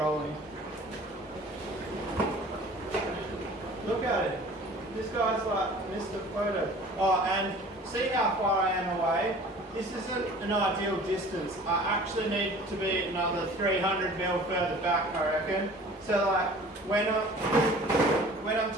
Look at it. This guy's like Mr. Photo. Oh, and see how far I am away? This isn't an ideal distance. I actually need to be another 300 mil further back, I reckon. So like, when I'm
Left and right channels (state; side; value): normal; both; correlation 0.46